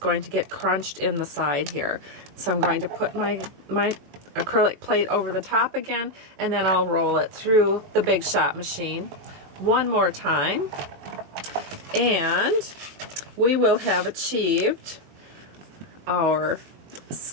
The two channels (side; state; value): left; late; 21 ms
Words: to get crunched in the side here. So I'm going to put my acrylic plate over the top again, and then I'll roll it through the Big Shot machine one more time, and we will have achieved our